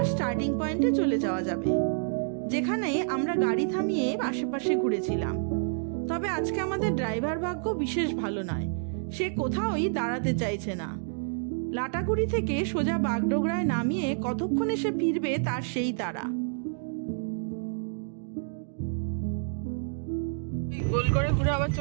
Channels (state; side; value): silent; left; digital silence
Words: স্টার্টিং পয়েন্টে চলে যাওয়া যাবে, যেখানে আমরা গাড়ি থামিয়ে আশেপাশে ঘুরেছিলাম। তবে আজকে আমাদের ড্রাইভার ভাগ্য বিশেষ ভালো নয়, সে কোথাওই দাঁড়াতে চাইছে না। লাটাগুড়ি থেকে সোজা বাগডোগরায় নামিয়ে কতক্ষণে সে ফিরবে তার সেই তাড়া। গোল করে ঘুরে আবার